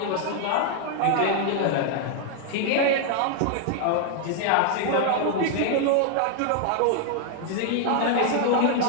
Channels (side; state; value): both; different; correlation 0.00